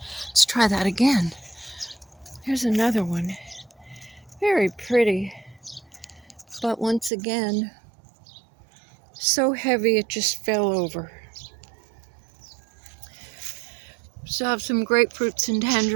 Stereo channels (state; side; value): drops out; left; at 7.1 s